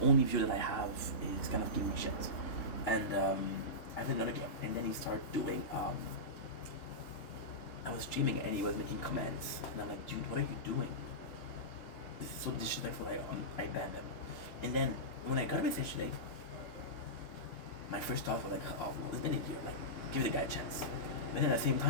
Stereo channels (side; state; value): right; late; 3.3 ms